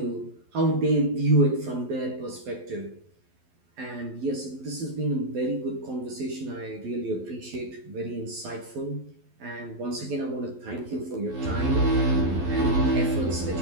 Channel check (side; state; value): left; late; 12 ms